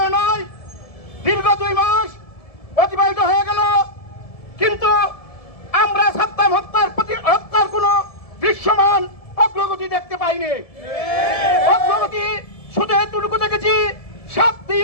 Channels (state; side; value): late; right; 1.7 ms